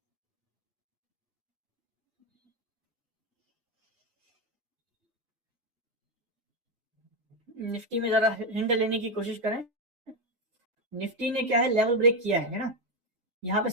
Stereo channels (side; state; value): left; late; 6.3 ms